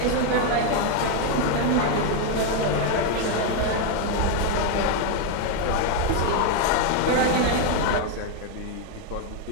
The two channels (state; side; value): different; both; correlation 0.01